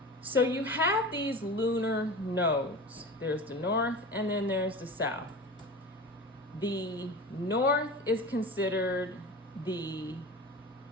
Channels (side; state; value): both; normal; correlation 0.33